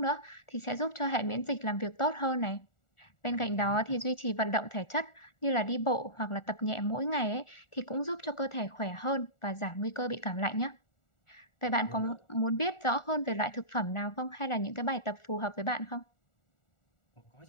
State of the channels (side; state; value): right; late; 1.4 ms